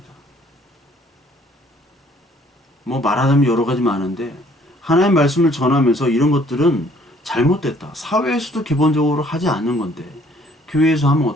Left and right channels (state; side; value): normal; both; correlation 0.60